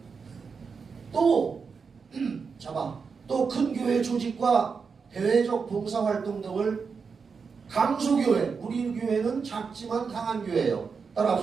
또 잡아 또 큰 교회 조직과 대외적 봉사활동 등을 강소교회, 우리 교회는 작지만 강한 교회예요.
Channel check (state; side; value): quieter; left; 5.4 dB